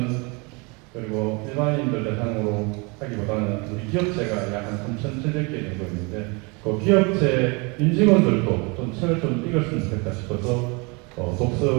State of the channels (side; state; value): left; quieter; 29.6 dB